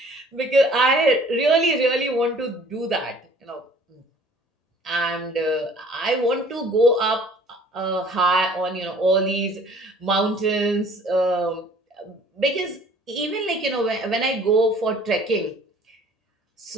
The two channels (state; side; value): normal; both; correlation 0.53